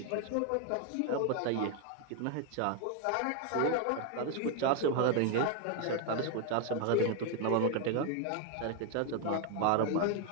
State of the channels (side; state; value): both; different; correlation 0.01